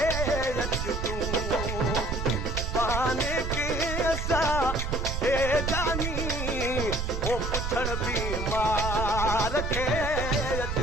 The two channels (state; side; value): noise; right; rumble, 3 dB below the sound